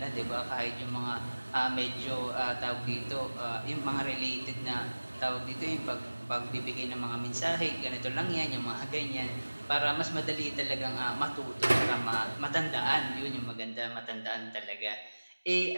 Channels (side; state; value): both; inverted; correlation -1.00